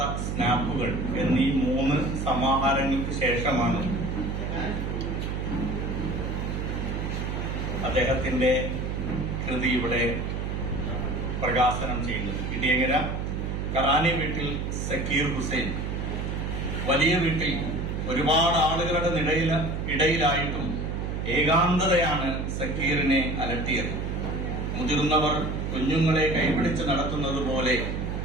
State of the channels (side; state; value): right; noise; hum, 2 dB below the sound